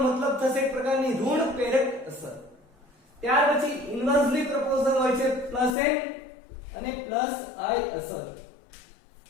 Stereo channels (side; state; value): right; drops out; at 5.8 s